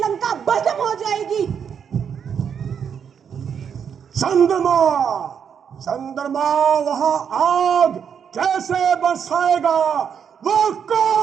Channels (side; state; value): left; quieter; 7.5 dB